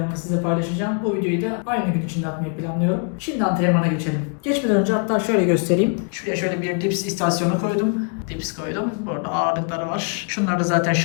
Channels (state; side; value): quieter; right; 38.8 dB